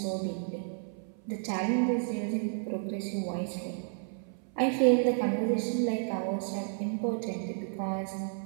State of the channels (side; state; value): left; silent; 57 dB below the other